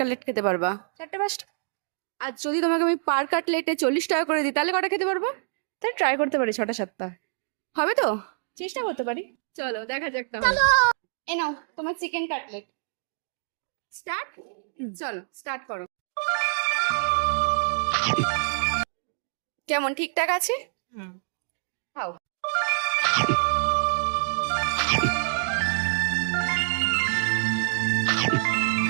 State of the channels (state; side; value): silent; left; digital silence